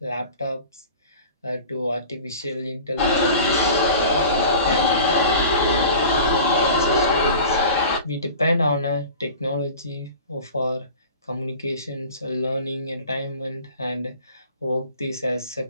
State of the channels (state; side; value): inverted; both; correlation -0.40